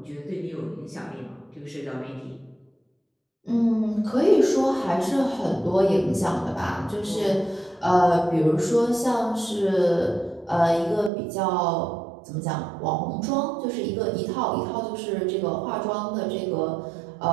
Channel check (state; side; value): drops out; left; at 11.1 s